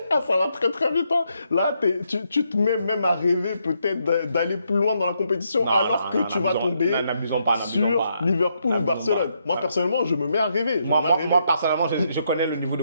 Ça va très très vite. Hein. Là, tu te mets même à rêver peut-être d'aller plus loin dans la compétition que tu vas tomber sur Liverpool ou Barcelone. Moi, personnellement, je me mets à rêver. Moi, personnellement, je connais le niveau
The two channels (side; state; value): both; inverted; correlation -0.78